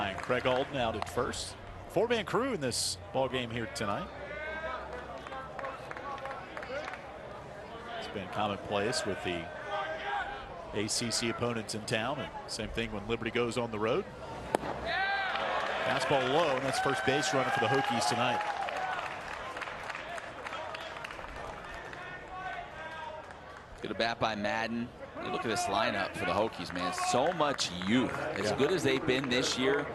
Craig Alden out at first. Four-man crew in this ball game here tonight. It's been commonplace with the ACC opponents in town, and same thing when Liberty goes on the road. Fastball low, and that's first base runner for the Hokies tonight. Good at bat by Madden. You look at this lineup for the Hokies, man. So much youth. As good as they've been this year.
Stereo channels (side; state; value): both; identical; correlation 1.00